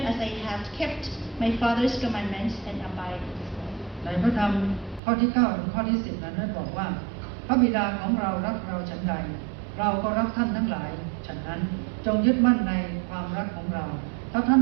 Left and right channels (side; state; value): left; drops out; at 5.0 s